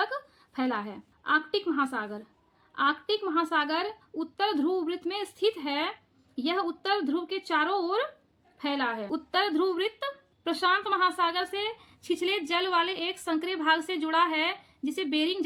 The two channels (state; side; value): identical; both; correlation 1.00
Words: फैला है। आर्कटिक महासागर। आर्कटिक महासागर उत्तर ध्रुव वृत्त में स्थित है। यह उत्तर ध्रुव के चारों ओर फैला है। उत्तर ध्रुव वृत्त प्रशांत महासागर से छिछले जल वाले एक संकरे भाग से जुड़ा है, जिसे बेरिंग